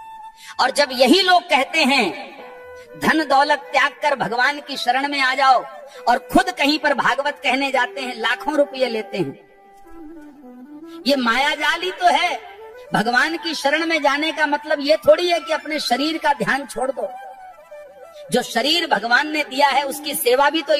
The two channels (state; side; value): identical; both; correlation 1.00